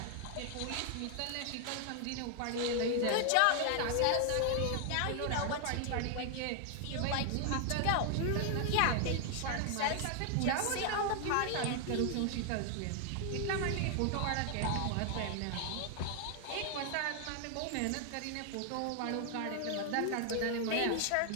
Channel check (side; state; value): both; different; correlation 0.00